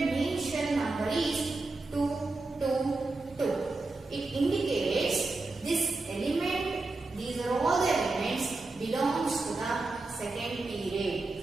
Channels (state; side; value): quieter; left; 3.4 dB